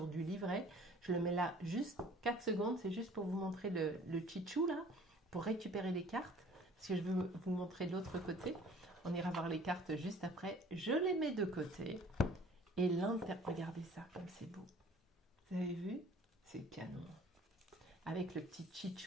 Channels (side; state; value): both; normal; correlation 0.51